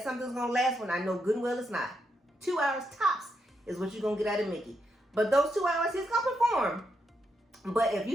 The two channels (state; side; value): normal; both; correlation 0.81